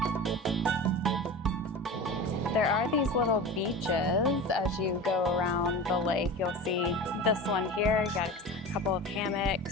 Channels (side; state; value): both; normal; correlation 0.31